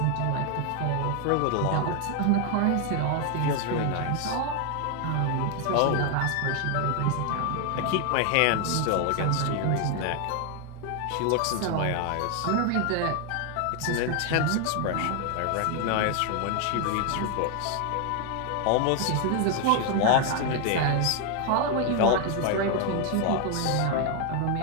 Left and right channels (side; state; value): both; different; correlation 0.01